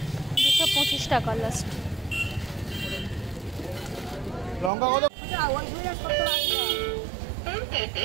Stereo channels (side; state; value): left; drops out; at 4.7 s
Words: 225 টাকা লাস্ট। লঙ্কা কত? ওই ঘুরে কত লাগবে?